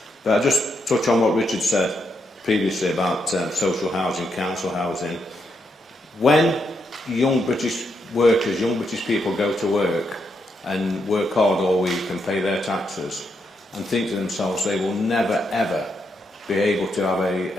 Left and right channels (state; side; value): normal; both; correlation 0.80